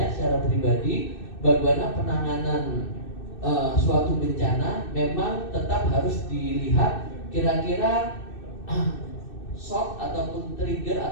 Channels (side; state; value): right; late; 2.6 ms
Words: secara pribadi, bagaimana penanganan suatu bencana memang tetap harus dilihat kira-kira shock ataupun trigger